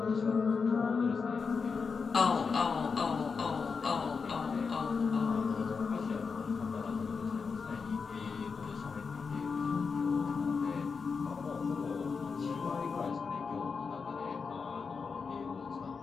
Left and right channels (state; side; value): quieter; right; 5.2 dB